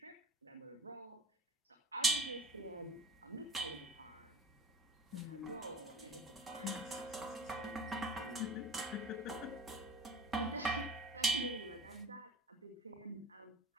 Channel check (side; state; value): both; normal; correlation 0.39